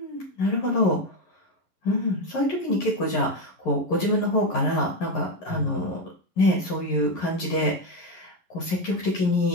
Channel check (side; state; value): right; late; 11 ms